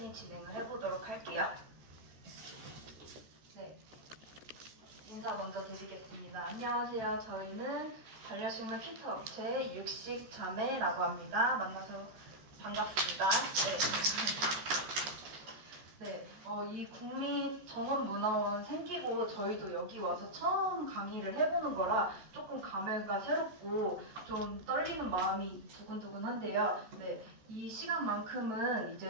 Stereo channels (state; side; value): late; left; 14 ms